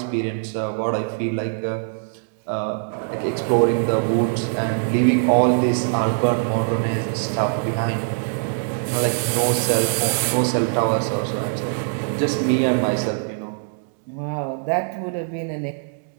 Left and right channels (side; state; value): left; silent; digital silence